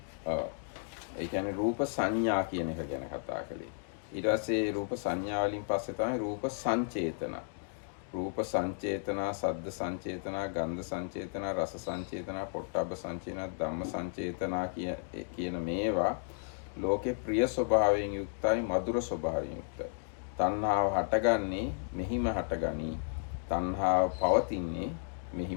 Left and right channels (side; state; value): right; silent; 55 dB below the other